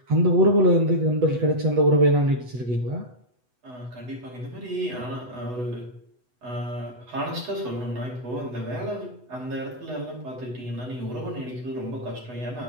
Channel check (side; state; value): left; late; 8.0 ms